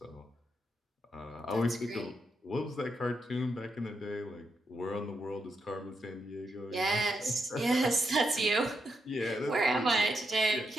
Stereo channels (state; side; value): normal; both; correlation 0.82